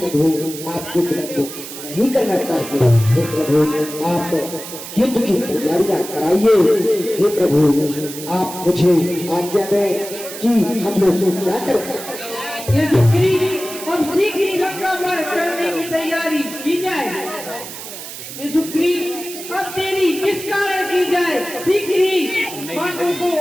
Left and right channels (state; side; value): noise; right; hiss, 11 dB below the sound